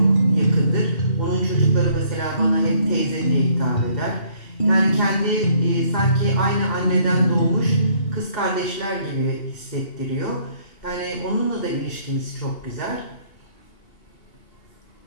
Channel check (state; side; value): late; right; 2.8 ms